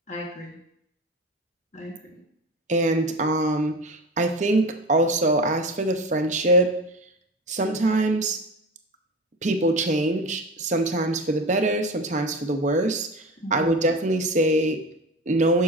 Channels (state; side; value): normal; both; correlation 0.29